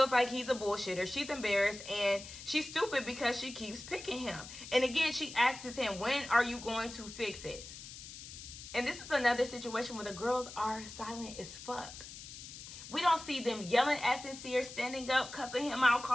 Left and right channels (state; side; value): noise; left; hiss, 13 dB below the sound